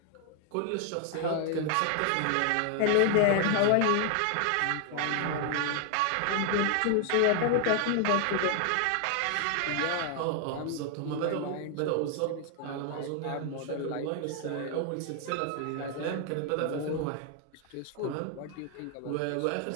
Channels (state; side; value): different; both; correlation 0.00